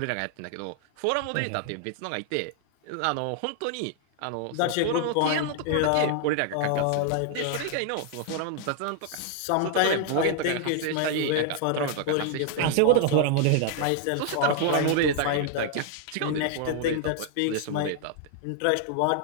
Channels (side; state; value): both; different; correlation 0.00